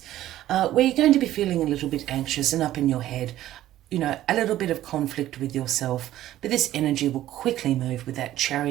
where you're going to be feeling a little bit anxious and up in your head. You know, a little bit of conflict with yourself, but this energy will quickly move with that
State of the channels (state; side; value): quieter; left; 13.7 dB